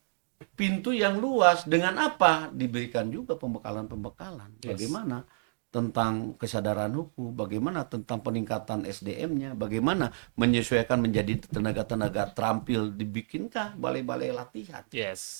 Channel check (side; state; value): left; silent; digital silence